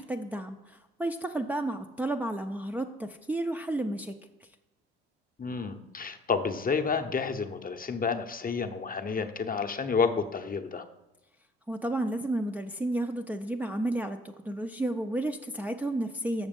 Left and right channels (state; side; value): normal; both; correlation 0.58